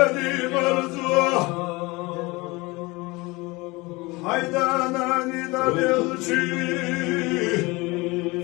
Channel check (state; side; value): quieter; right; 23.7 dB